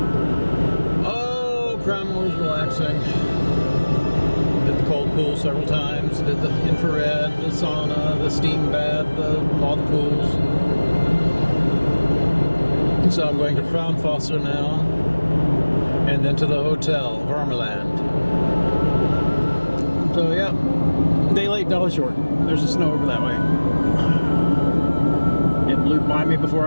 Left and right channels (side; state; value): both; inverted; correlation -1.00